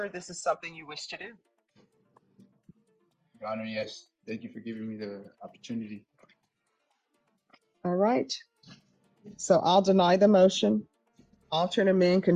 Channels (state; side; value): identical; both; correlation 1.00